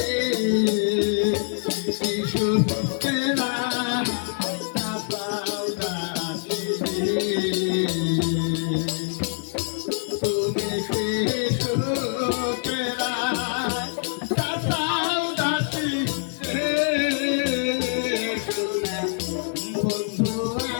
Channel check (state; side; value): silent; right; digital silence